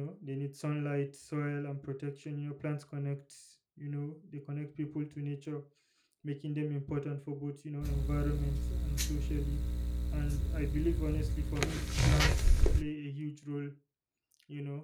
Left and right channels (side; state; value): both; identical; correlation 1.00